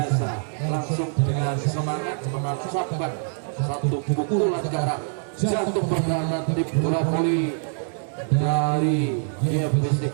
Langsung dengan semangat mengucapkan satu pukulan ke arah jatuh perdana tim bola voli dari GFC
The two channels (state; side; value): silent; left; 62 dB below the other